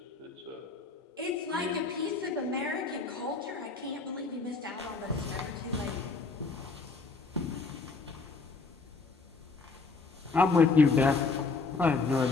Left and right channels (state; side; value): quieter; right; 4.2 dB